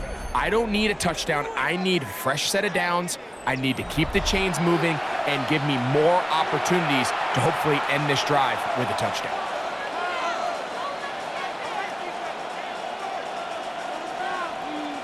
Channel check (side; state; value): both; identical; correlation 1.00